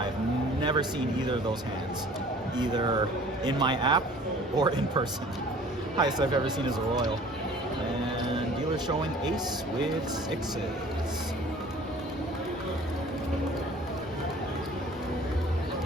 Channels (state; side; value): normal; both; correlation 0.49